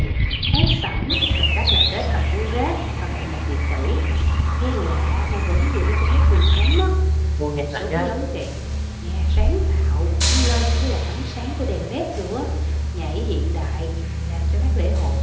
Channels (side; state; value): both; identical; correlation 1.00